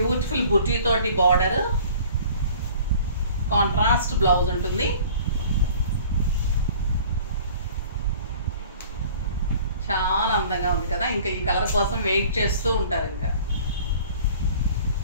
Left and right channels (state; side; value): inverted; both; correlation -0.48